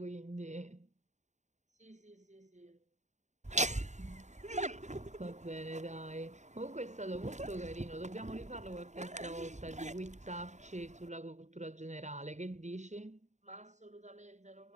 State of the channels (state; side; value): late; left; 0.34 ms